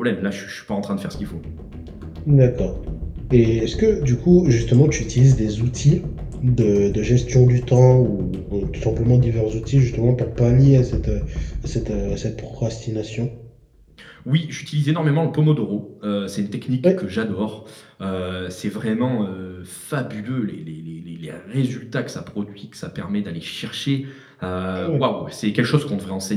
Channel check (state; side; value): identical; both; correlation 1.00